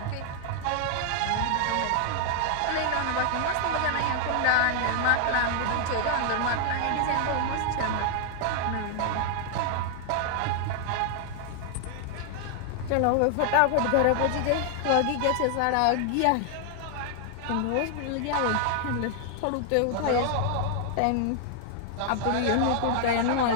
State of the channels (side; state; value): both; different; correlation 0.00